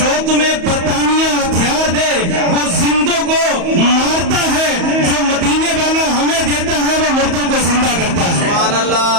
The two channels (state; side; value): late; left; 34 ms